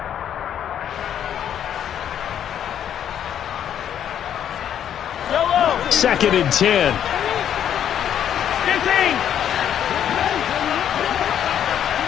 Second and 10. 15.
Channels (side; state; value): right; quieter; 9.7 dB